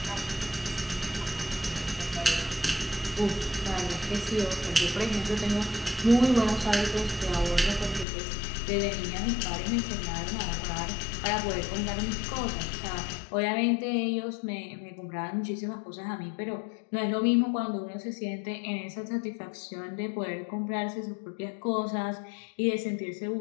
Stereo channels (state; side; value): drops out; right; at 8.1 s